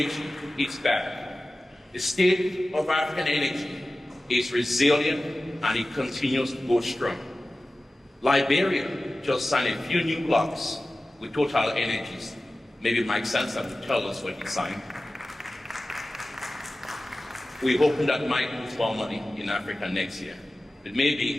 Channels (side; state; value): both; normal; correlation 0.96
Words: is bad. The state of African energy is resilient, and it continues to go strong. Liberia just signed a few new blocks with Total Energies. Maybe Mike Sansa will tell us what he signed. We hope that Mike moves more money in Africa next year. But